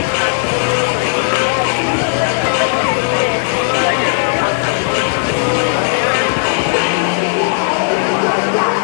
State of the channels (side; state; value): right; silent; digital silence